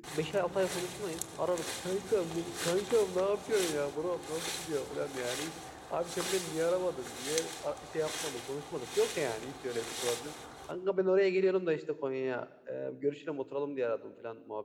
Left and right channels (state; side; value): identical; both; correlation 1.00